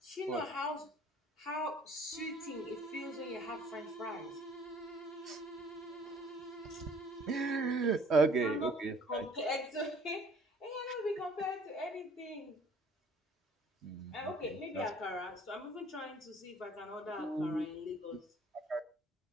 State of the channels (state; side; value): normal; both; correlation 0.55